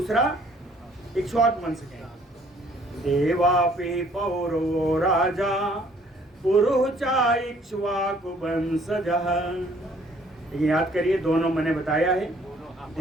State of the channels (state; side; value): normal; both; correlation 0.60